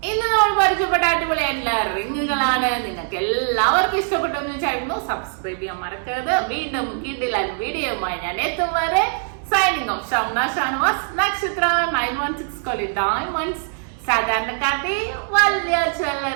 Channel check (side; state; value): left; silent; 59 dB below the other